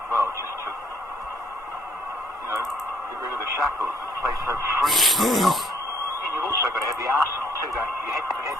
well, just to, you know, get rid of the shackles and play so freely. And you've also also got to have the arsenal too, don't you? You have to have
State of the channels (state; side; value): normal; both; correlation 0.64